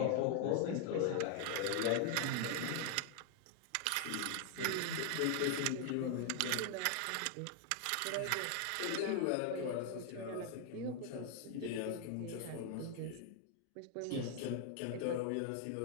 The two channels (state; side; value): different; both; correlation 0.00